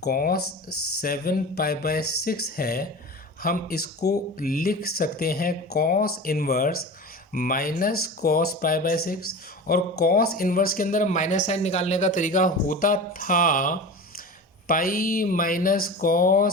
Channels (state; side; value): normal; both; correlation 0.31